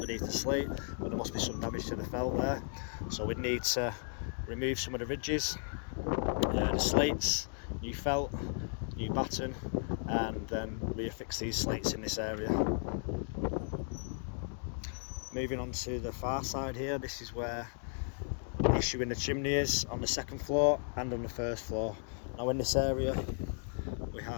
the slate. But there must be some damage to the felt there, so we'd need to remove some of the ridges, the slates, new felt, new batten, and then reaffix these slates in this area. Moving on to the far side here, this is where the issue in the chimney is, on the 2nd floor and on the 1st floor. Now in this area we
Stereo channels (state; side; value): silent; right; 54 dB below the other